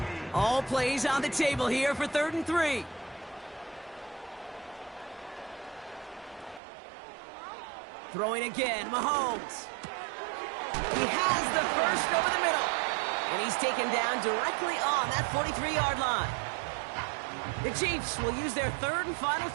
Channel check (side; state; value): left; drops out; at 6.6 s